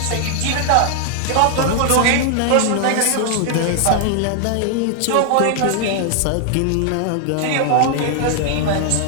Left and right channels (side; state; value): both; different; correlation 0.00